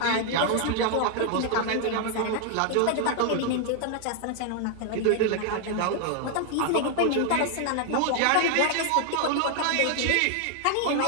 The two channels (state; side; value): different; both; correlation 0.00